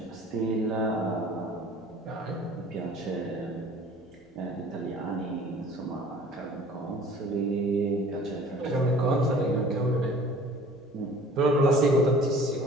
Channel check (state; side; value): normal; both; correlation 0.48